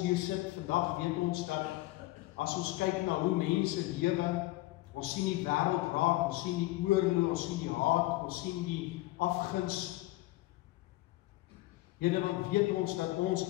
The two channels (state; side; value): quieter; right; 18.6 dB